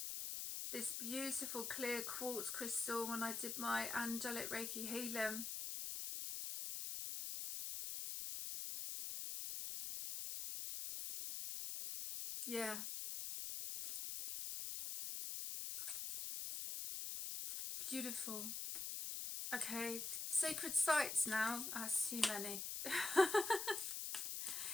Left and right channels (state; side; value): noise; left; hiss, 3 dB below the sound